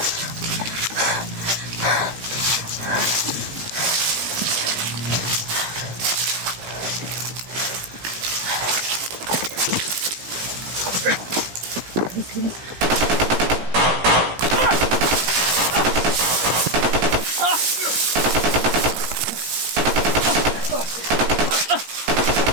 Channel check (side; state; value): left; late; 17 ms